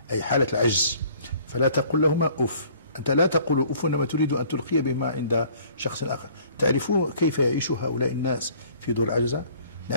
أي حالة العجز فلا تقل لهما أف. أنت لا تقول أف إنما تريد أن تلقي بما عند شخص آخر. تعرفون كيف يعيش هؤلاء الناس في دور العجزة؟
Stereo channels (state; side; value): inverted; both; correlation -0.55